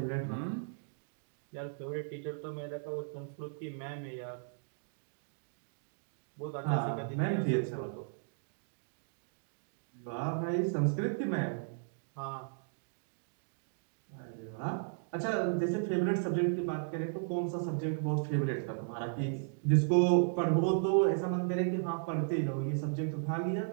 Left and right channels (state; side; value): silent; left; digital silence